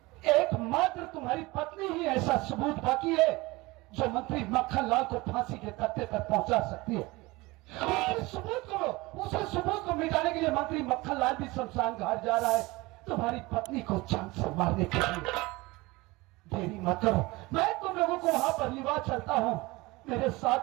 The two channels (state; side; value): quieter; left; 22.1 dB